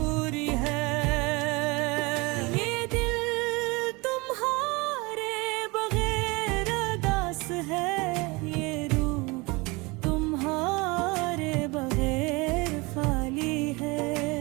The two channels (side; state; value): left; quieter; 25.5 dB